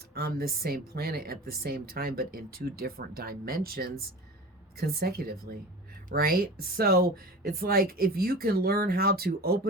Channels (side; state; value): both; normal; correlation 0.35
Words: on this same planet at the same time, but in two different dimensions consecutively, right? So it's like, if you can learn how to